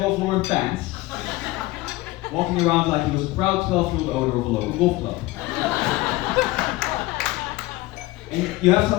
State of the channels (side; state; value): right; quieter; 19.4 dB